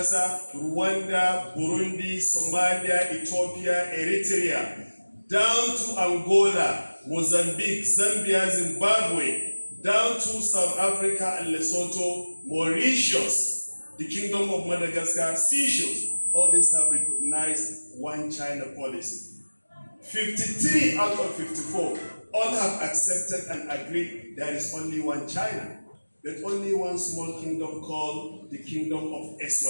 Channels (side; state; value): both; inverted; correlation -1.00